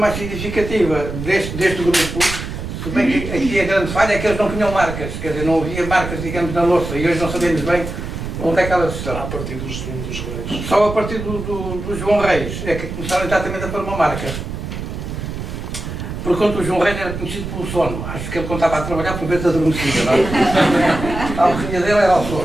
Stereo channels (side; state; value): right; noise; rumble, 7 dB below the sound